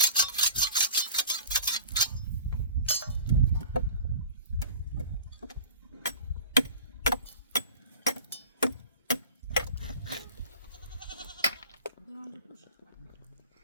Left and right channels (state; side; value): inverted; both; correlation -0.41